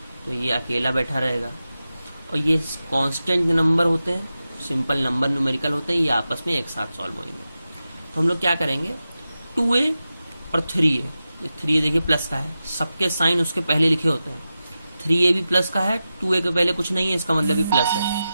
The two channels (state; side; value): inverted; both; correlation -0.92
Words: तो ये अकेला बैठा रहेगा। और ये कांस्टेंट नंबर होते हैं, सिंपल नंबर न्यूमेरिकल होते हैं, ये आपस में एक साथ सॉल्व होंगे। तो हम लोग क्या करेंगे, 2a और 3a, 3a देखिए प्लस का है, सबके साइन उसके पहले लिखे होते हैं। 3a भी प्लस का है, 2a के पहले कुछ नहीं है, इसका मतलब भी प्लस है,